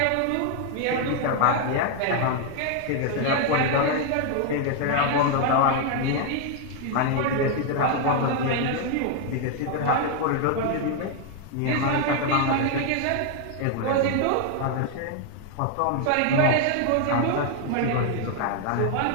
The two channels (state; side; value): different; both; correlation 0.00